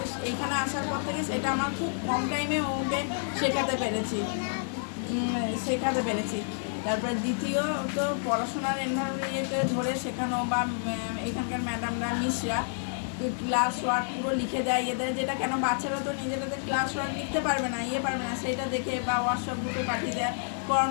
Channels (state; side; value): silent; right; 58 dB below the other